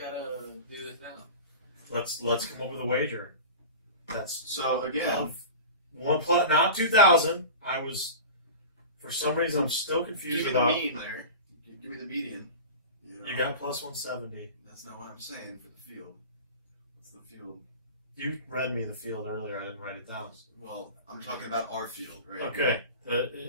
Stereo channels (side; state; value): both; inverted; correlation -0.33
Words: this now. Let's come up with a wager. That's So again, not 2,000. I was, for some reason, I'm still confused give me about. the mean there. Give me the median. You got plus 170. That's not what I'm saying for the field. It's the field. You read me the field earlier. I didn't write it down. Well, I'm talking about our field, right? Okay.